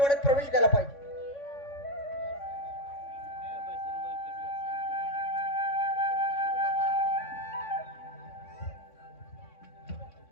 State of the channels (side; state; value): right; late; 3.6 ms